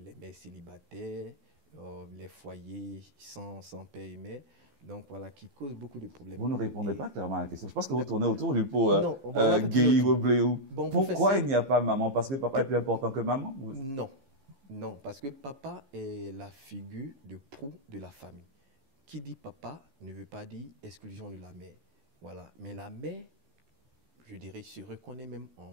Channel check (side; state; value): left; late; 15 ms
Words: Vous ne répondez pas clairement à la question. Je pense que vous tournez autour du pot Guéhi Wobléou. Pourquoi il n'y a pas maman? Parce que papa est plus important que maman?